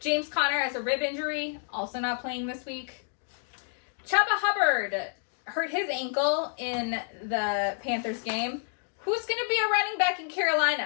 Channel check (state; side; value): silent; right; 59 dB below the other